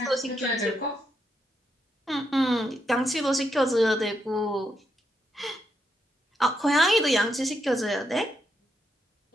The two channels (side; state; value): both; normal; correlation 0.80